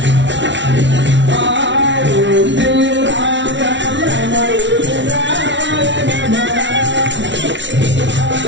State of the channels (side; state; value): left; late; 0.53 ms